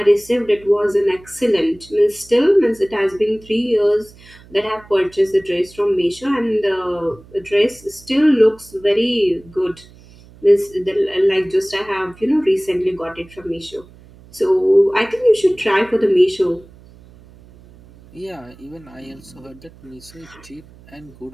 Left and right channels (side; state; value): right; noise; hum, 24 dB below the sound